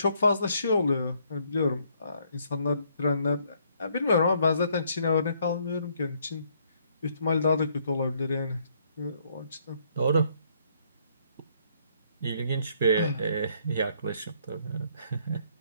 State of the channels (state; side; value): inverted; both; correlation -0.68